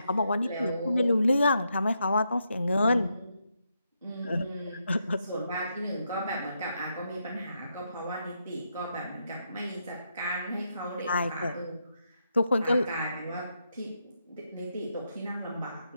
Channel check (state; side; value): inverted; both; correlation -0.81